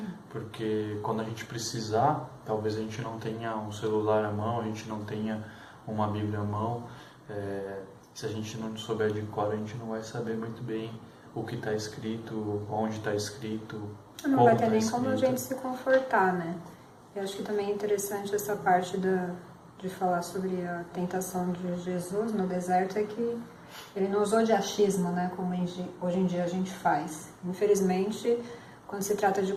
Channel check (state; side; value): identical; both; correlation 1.00